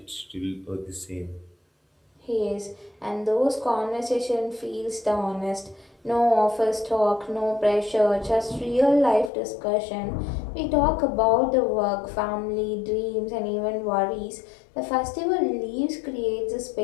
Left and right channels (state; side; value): drops out; right; at 9.3 s